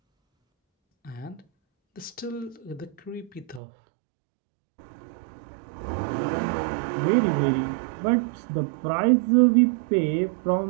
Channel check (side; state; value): left; drops out; at 3.6 s